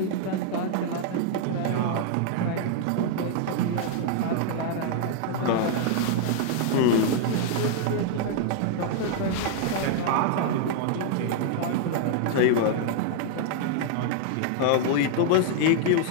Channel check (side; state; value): both; different; correlation 0.00